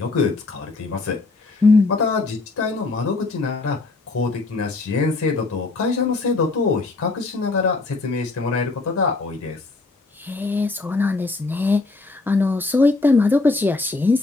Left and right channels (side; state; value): right; quieter; 3.5 dB